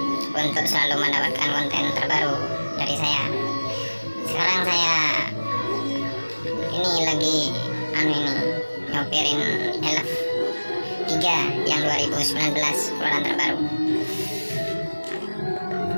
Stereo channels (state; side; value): inverted; both; correlation -1.00